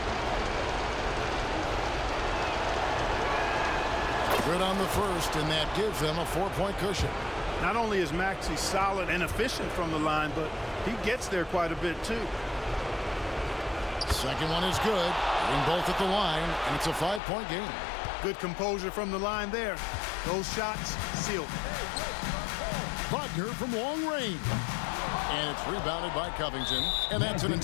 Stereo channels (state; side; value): drops out; right; at 17.2 s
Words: Good on the first, and that gives them a 4-point cushion. Not only is Maxey solid and efficient from the line, but he gets there quite a bit too. Second one is good. Getting both at the line, and it's a 5-point game. Good composure from the line there. Those shots sealed. Wagner from long range. And it's rebounded by Covington, and that's an